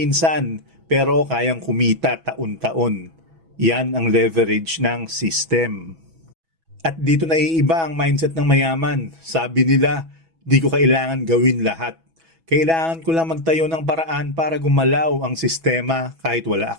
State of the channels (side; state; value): left; late; 6.1 ms